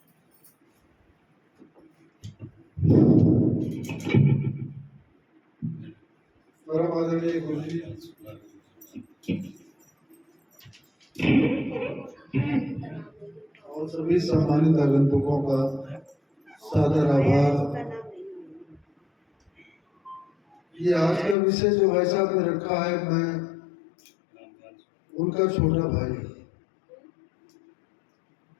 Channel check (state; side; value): drops out; right; at 21.4 s